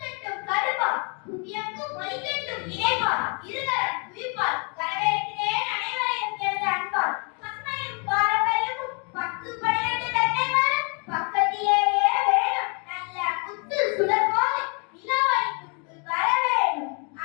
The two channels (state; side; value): quieter; right; 35.7 dB